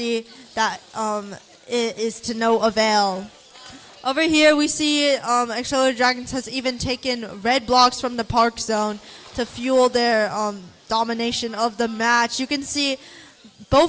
that it is to no avail. Over here, we see Accelerated Dragons has even taken red blocks from the park zone to fuel their domination of the match. You can see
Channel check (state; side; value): identical; both; correlation 1.00